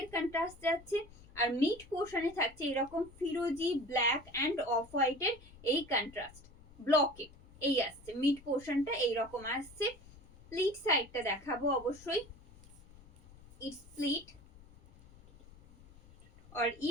contrast যাচ্ছে আর mid পোর্শনে থাকছে এরকম ফিরোজি black end of হোয়াইটের এই কন্ট্রাস্ট ব্লকে এই আসছে। মিড পোর্শনটা এইরকম আসছে। প্লিট সাইডটা দেখাবো অবশ্যই। इट्स प्लीट और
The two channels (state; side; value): noise; left; rumble, 22 dB below the sound